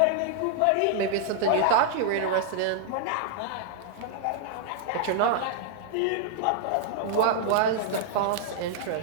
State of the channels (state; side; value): different; both; correlation -0.01